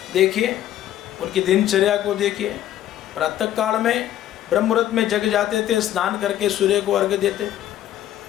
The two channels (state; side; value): quieter; right; 12.2 dB